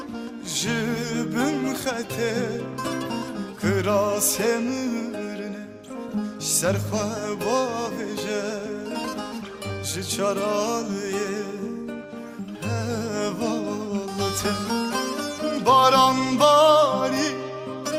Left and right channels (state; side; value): identical; both; correlation 1.00